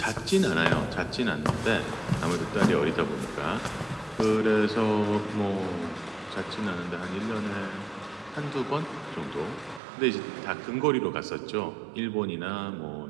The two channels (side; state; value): left; drops out; at 9.8 s